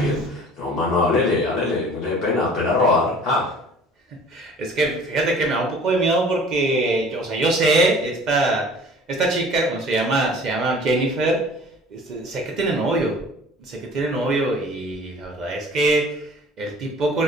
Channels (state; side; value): normal; both; correlation 0.48